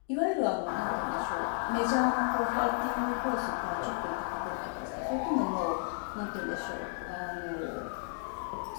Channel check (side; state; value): right; silent; 56 dB below the other